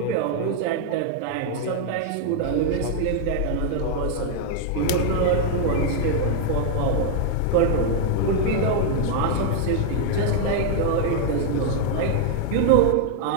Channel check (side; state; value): both; different; correlation 0.00